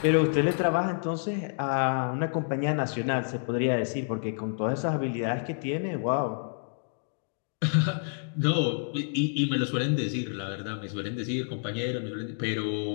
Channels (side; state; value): right; silent; digital silence